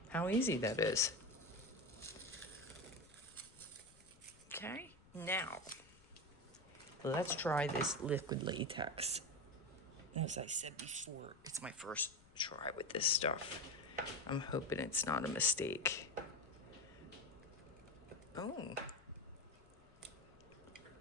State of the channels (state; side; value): noise; left; rumble, 25 dB below the sound